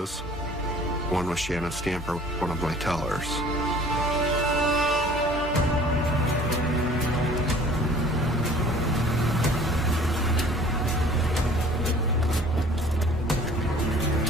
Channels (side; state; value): both; normal; correlation 0.51